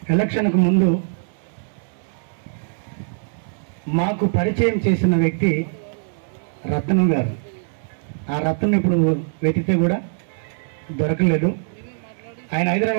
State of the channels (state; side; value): silent; left; digital silence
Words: ఎలక్షన్కు ముందు మాకు పరిచయం చేసిన వ్యక్తి రత్నం గారు. ఆ రత్నం ఇప్పుడు వెతికితే కూడా దొరకలేదు. ఆయన